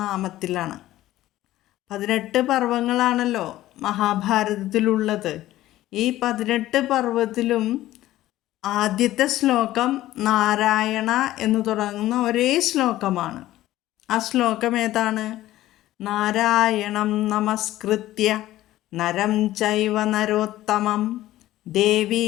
നാമത്തിലാണ്. 18 പർവ്വങ്ങളാണല്ലോ മഹാഭാരതത്തിലുള്ളത്. ഈ 18 പർവ്വത്തിലും ആദ്യത്തെ ശ്ലോകം നാരായണ എന്ന് തുടങ്ങുന്ന ഒരേ ശ്ലോകമാണ്. ആ ശ്ലോകം ഏതാണ്? നാരായണം നമസ്കൃത്യ നരം ചൈവ നരോത്തമം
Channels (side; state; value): right; quieter; 15.0 dB